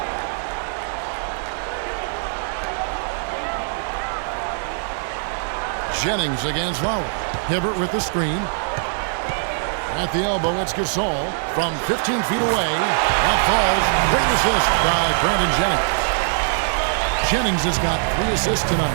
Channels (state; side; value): silent; left; 63 dB below the other